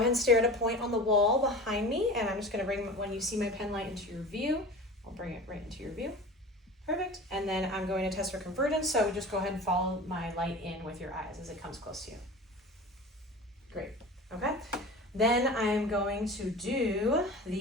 and stare at a point on the wall behind me, and I'm just going to bring, when you see my pen light into your view, I'll bring it right into your view. Perfect. And then I'm going to test for convergence, so just go ahead and follow my light in with your eyes as it comes close to you. Great. Okay. Then I'm going to do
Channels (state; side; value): normal; both; correlation 0.35